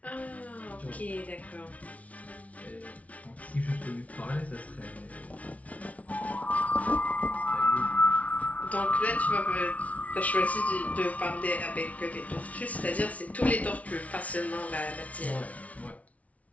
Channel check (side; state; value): right; late; 0.067 ms